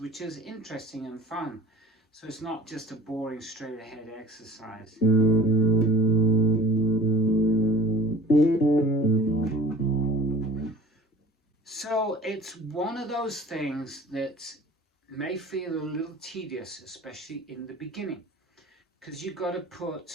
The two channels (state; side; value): normal; both; correlation 0.47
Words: which is interesting and fun. So it's not just a boring straight ahead exercise. So it's one of those things that may feel a little tedious, especially in the beginning, because you've got to